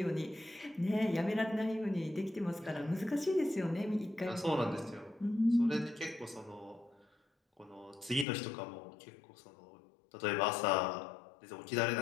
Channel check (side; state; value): right; drops out; at 8.2 s